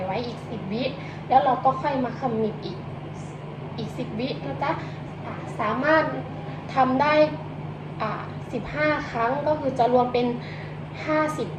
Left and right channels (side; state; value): both; identical; correlation 1.00